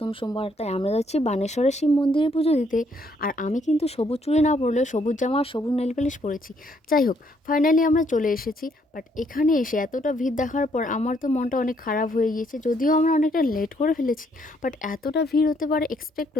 সোমবার, তাই আমরা যাচ্ছি বানেশ্বরের শিব মন্দিরে পুজো দিতে। আর আমি কিন্তু সবুজ চুড়ি না পরলেও সবুজ জামা আর সবুজ নেল পালিশ পরেছি। যাই হোক, ফাইনালি আমরা চলে এসেছি। বাট এখানে এসে এতটা ভিড় দেখার পর আমার তো মনটা অনেক খারাপ হয়ে গিয়েছে, যদিও আমরা অনেকটা লেট করে ফেলেছি। বাট এতটা ভিড় হতে পারে এক্সপেক্ট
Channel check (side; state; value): both; normal; correlation 0.70